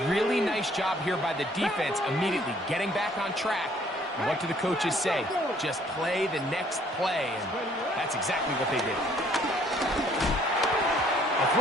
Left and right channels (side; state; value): both; normal; correlation 0.61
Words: Really nice job here by the defense immediately getting back on track. And what do the coaches say? Just play the next play, and that's exactly what they did. A